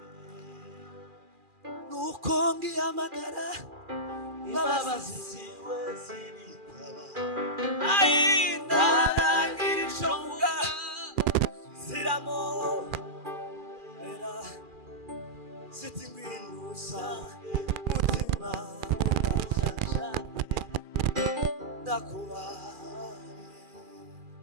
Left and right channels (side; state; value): left; late; 2.4 ms